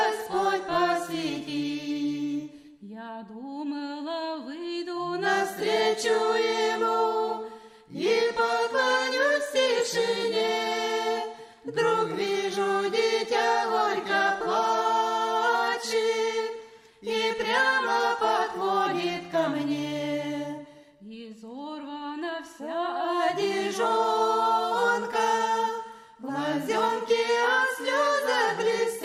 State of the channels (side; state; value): both; identical; correlation 1.00